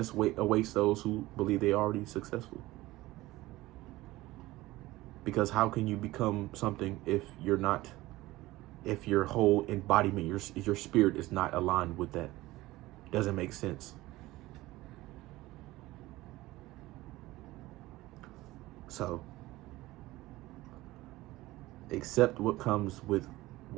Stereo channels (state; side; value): quieter; left; 18.3 dB